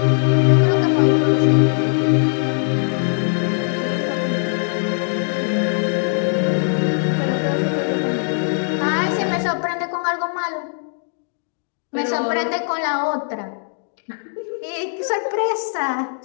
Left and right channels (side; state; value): right; silent; digital silence